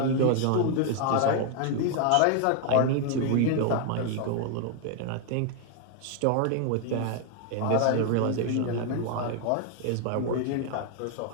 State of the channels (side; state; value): both; different; correlation 0.00